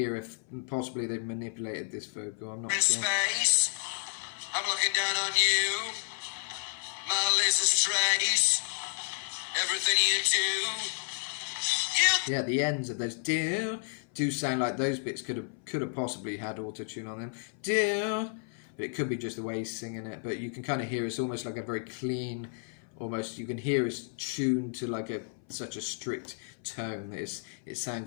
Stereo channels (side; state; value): right; silent; 57 dB below the other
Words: if possibly they've manipulated this vocal. I'm not sure. Space, I'm looking down on you. My laser's trace, everything you do. Yeah, the ends of those do sound like those bits could have possibly had auto-tune on them. But it could be just the way he's singing it. But you can kind of hear it's almost like a very clean, almost you can hear it's tuned to like such a strict tone that it